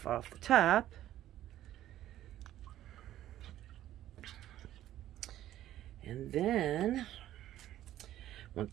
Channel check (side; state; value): left; quieter; 13.0 dB